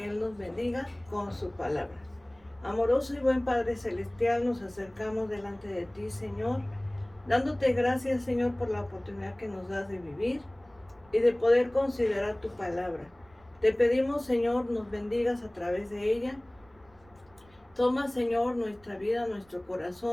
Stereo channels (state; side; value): noise; right; rumble, 30 dB below the sound